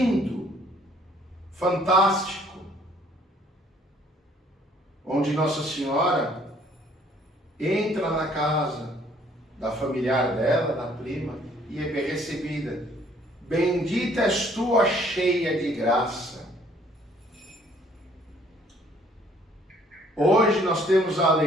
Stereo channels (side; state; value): both; normal; correlation 0.61